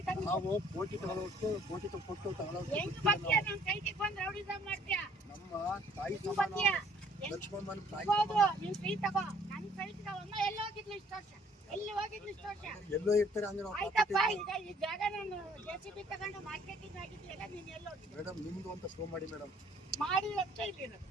ನಾವು ಕೋಟಿ ತಗೊಳ್ಳೋಷ್ಟು ಕೋಟಿ ಕೊಟ್ಟು ನಮ್ಮ ತಾಯಿ ಸಮಾನ ಲಕ್ಷ್ಮಮ್ಮನ ತಾಯಿ ಎಲ್ಲೋ ಇರ್ತಾರೆ ಅಂದ್ರೆ ಮೇಡಮ್ ನಿಮ್ದು ಅಂತ ಶೋ ಮಾಡಿ ಮೇಡಮ್.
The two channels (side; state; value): both; normal; correlation 0.59